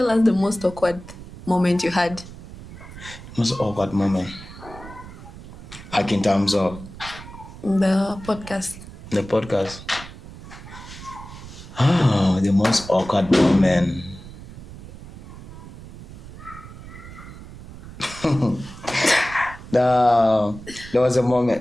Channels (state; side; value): noise; right; rumble, 15 dB below the sound